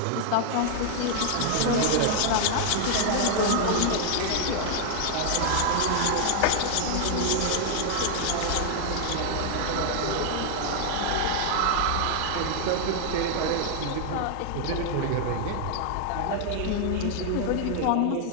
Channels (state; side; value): different; both; correlation 0.00